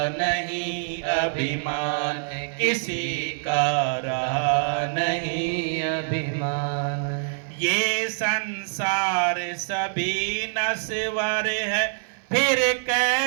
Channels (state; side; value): silent; left; digital silence